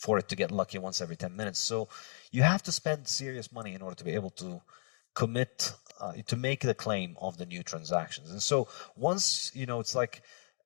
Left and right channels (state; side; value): silent; right; 54 dB below the other